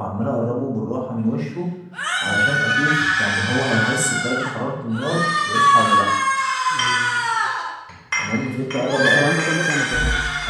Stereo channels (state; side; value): identical; both; correlation 1.00